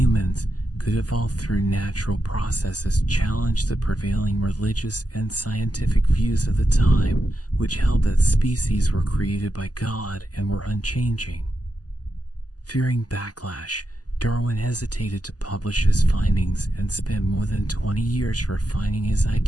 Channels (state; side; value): late; right; 0.68 ms